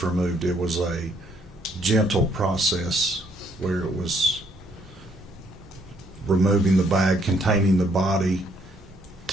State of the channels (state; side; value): normal; both; correlation 0.68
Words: removed, it was a gentle process where it was removing the bag containing the body,